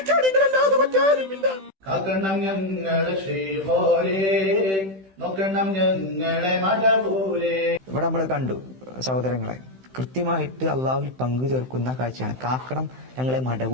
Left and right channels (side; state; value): left; late; 15 ms